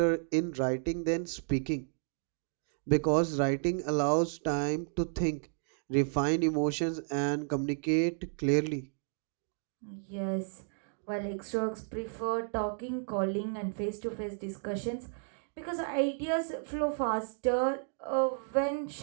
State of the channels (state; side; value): silent; left; digital silence